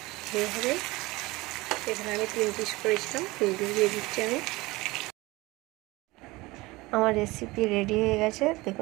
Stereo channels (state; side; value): quieter; left; 21.3 dB